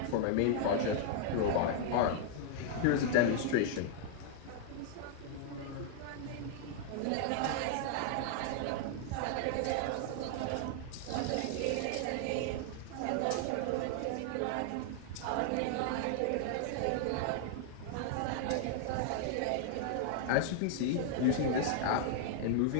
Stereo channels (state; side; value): different; both; correlation 0.00